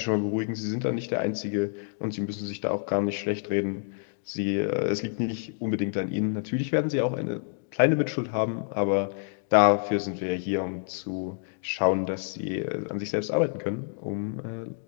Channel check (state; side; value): silent; right; digital silence